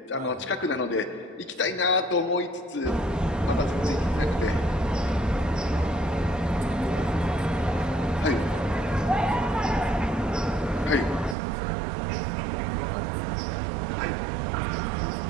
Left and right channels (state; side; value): drops out; left; at 11.4 s